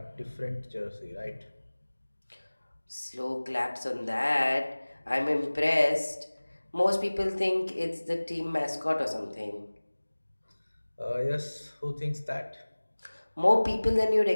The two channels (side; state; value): both; inverted; correlation -1.00